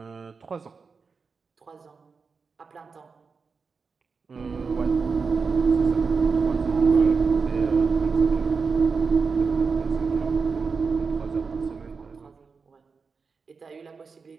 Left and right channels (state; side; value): quieter; left; 5.0 dB